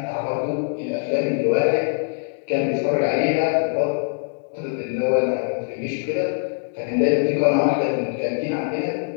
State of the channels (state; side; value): silent; right; digital silence